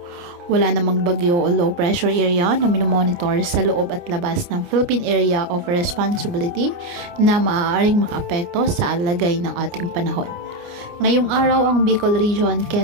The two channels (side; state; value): left; late; 29 ms